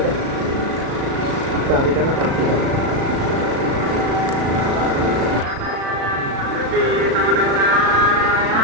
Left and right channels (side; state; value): left; late; 36 ms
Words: चारी का ना पांच का